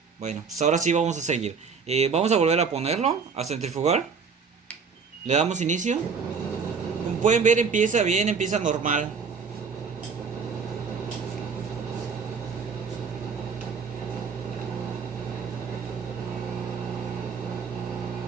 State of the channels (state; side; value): quieter; left; 5.5 dB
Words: Bueno, pues ahora sí vamos a seguir. Vamos a volver a ponerlo, a centrifugar. Le damos inicio. Como pueden ver, empieza bien, empieza normal.